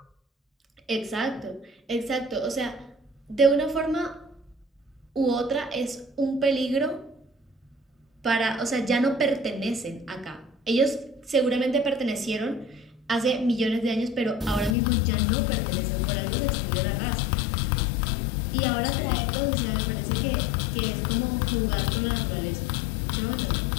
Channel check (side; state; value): right; drops out; at 14.8 s